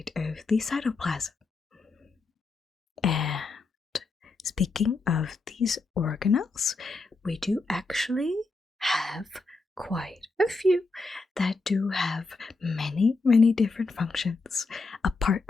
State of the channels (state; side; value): quieter; right; 3.7 dB